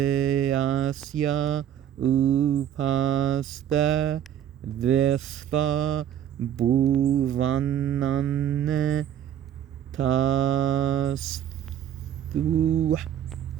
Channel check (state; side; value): quieter; left; 10.2 dB